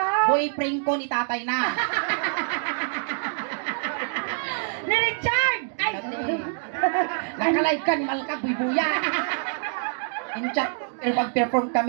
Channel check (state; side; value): silent; left; digital silence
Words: Boyfriend ko ni tatay na. Ni Richard! Ay! Nakalive ka ni Malka, buy-buya. In chat, mag-perform